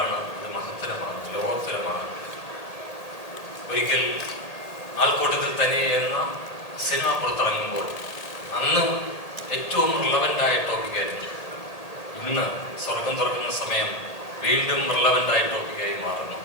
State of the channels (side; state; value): right; late; 1.8 ms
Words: അത് മഹത്തരമാണ്, ലോകോത്തരമാണ്. ഒരിക്കൽ ആൾക്കൂട്ടത്തിൽ തന്നെ എന്ന സിനിമ പുറത്തിറങ്ങുമ്പോൾ അന്ന് ഏറ്റവും റിലവൻ്റായ ടോപ്പിക്കായിരുന്നു. ഇന്ന് സ്വർഗം തുറക്കുന്ന സമയം വീണ്ടും റിലവൻ്റായ ടോപ്പിക്കായി മാറുന്നു.